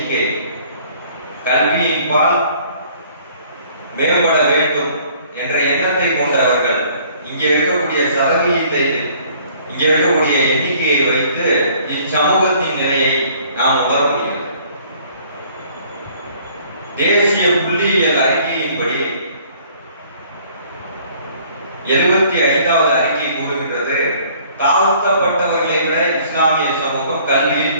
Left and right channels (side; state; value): both; inverted; correlation -0.57